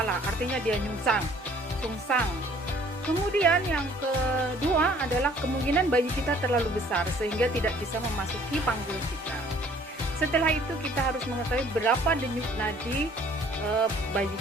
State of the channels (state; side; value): normal; both; correlation 0.56